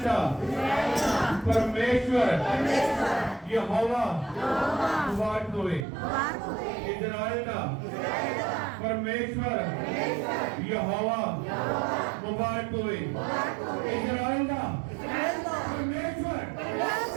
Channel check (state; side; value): drops out; left; at 5.9 s